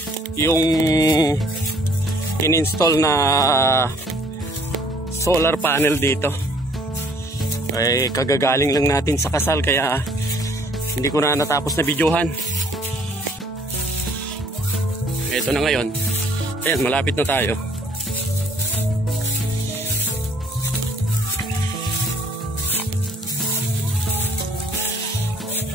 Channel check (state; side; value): normal; both; correlation 0.59